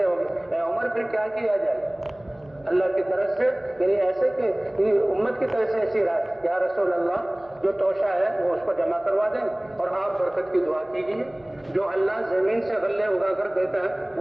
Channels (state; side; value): noise; right; hum, 29 dB below the sound